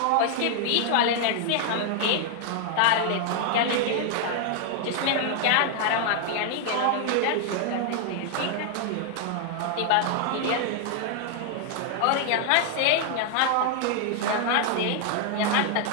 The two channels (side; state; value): both; different; correlation 0.00